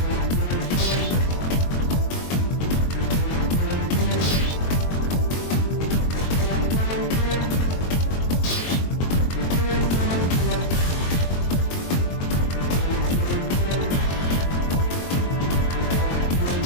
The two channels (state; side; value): late; right; 22 ms